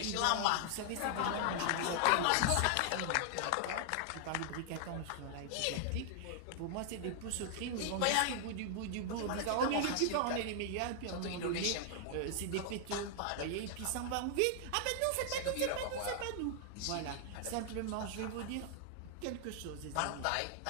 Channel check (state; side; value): different; both; correlation 0.00